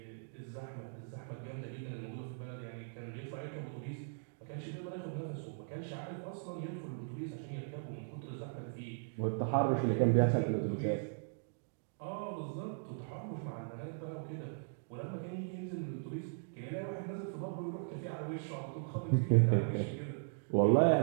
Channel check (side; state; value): left; silent; digital silence